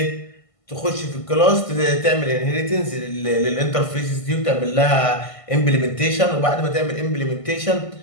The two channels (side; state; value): right; late; 1.5 ms